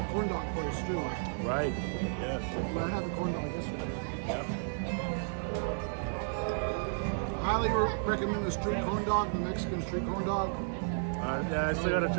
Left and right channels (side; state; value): left; silent; digital silence